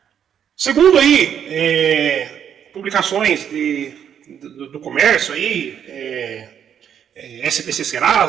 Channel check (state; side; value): quieter; left; 8.8 dB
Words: Segundo aí publicações do comércio aí, SPC